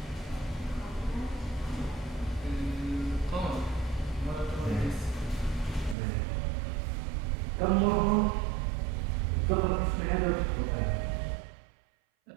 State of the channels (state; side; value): drops out; left; at 6.0 s